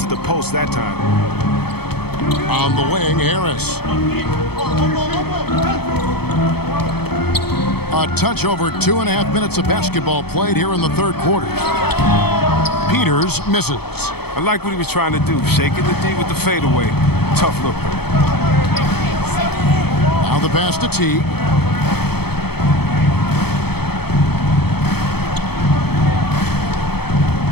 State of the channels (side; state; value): right; late; 0.96 ms